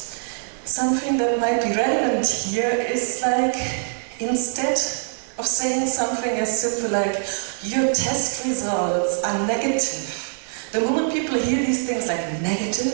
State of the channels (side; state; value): left; silent; 63 dB below the other